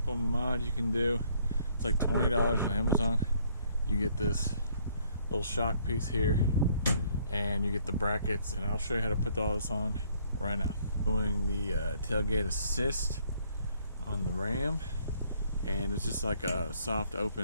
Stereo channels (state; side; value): inverted; both; correlation -0.64